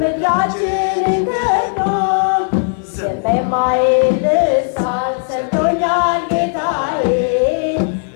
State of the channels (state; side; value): silent; right; 57 dB below the other